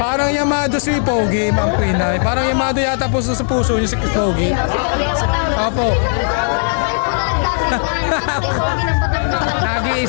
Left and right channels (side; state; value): right; silent; digital silence